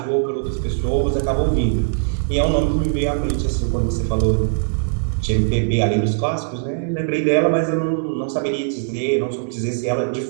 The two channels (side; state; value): left; silent; digital silence